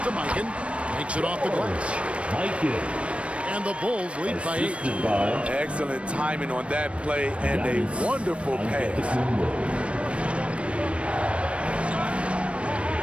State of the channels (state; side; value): late; left; 0.061 ms